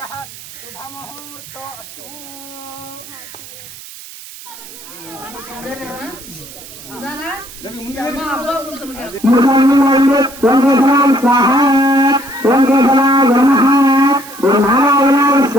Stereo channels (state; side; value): noise; right; hiss, 16 dB below the sound